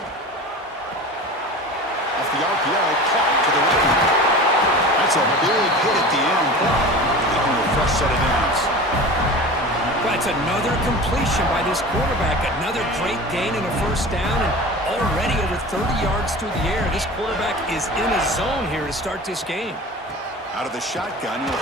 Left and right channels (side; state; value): both; normal; correlation 0.35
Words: Off the RPO, caught to the right. That's a big hit at the end. Taking a fresh set of downs. That's another completion by this quarterback. Another great gain in a first down, and already over 30 yards through the air. This quarterback is in a zone here to start this game. Out of the shotgun, he'll